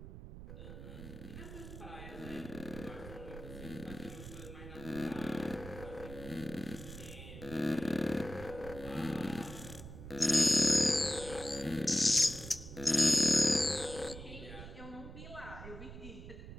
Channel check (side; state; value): right; noise; rumble, 12 dB below the sound